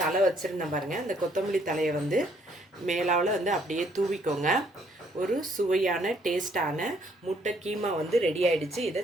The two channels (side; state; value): both; normal; correlation 0.66